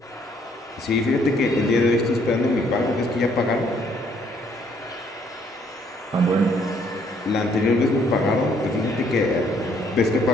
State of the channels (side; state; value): both; normal; correlation 0.66